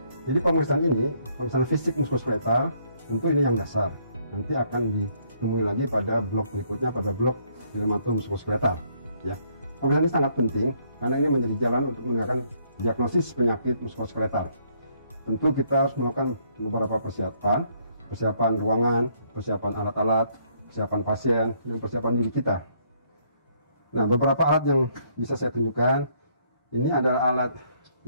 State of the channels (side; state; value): both; inverted; correlation -0.68